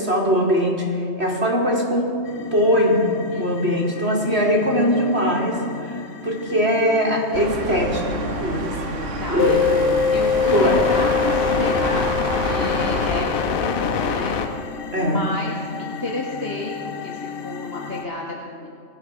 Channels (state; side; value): late; left; 3.1 ms